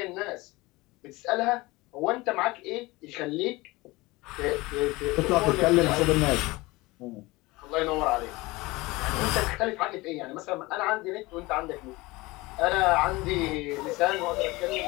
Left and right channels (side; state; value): right; quieter; 21.7 dB